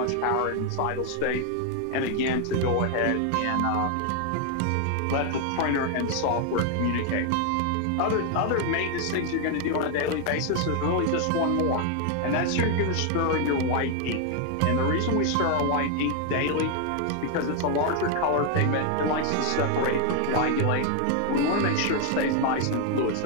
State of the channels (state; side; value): different; both; correlation 0.01